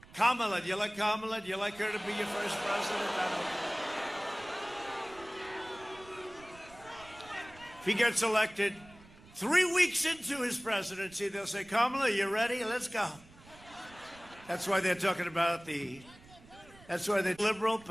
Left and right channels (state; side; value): noise; right; rumble, 23 dB below the sound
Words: Kamala. Do you like Kamala? Do you like her to be your first president? I don't know. If he gets elected 3 weeks into his presidency, they'll say, Kamala, you ready? Let's go. That's why they're talking about that's why the liberal